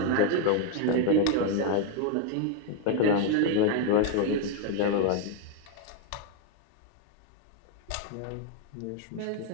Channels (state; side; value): different; both; correlation 0.01